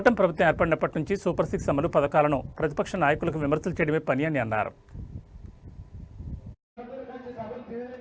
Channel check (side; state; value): both; identical; correlation 1.00